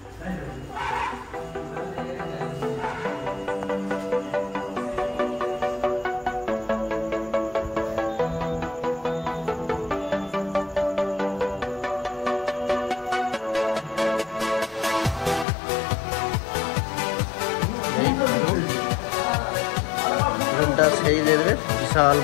রুমটা সেই লেভেলের বিশাল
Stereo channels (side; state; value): right; drops out; at 15.5 s